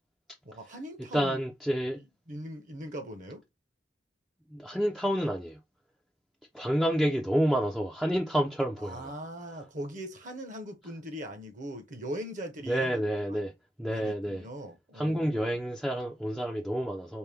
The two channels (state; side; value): normal; both; correlation 0.89